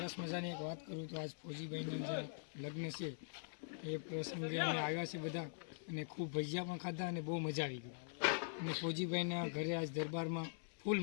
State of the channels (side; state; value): right; silent; digital silence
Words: મજાની એક વાત કરું તો આજ ફોજીભાઈના જે લગ્ન છે એ પ્રસંગે અમે આવ્યા છે બધા અને ખૂબ ભજીયા પણ ખાધા અને બહુ મજા આવી ગઈ. અને ફોજીભાઈના ઘરે આજ દરબારમાં ફૂલ